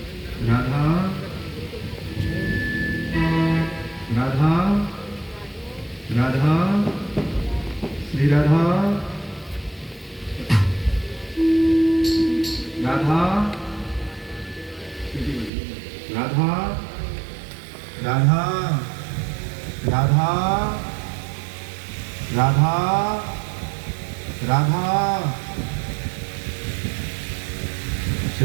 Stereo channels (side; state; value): left; drops out; at 15.5 s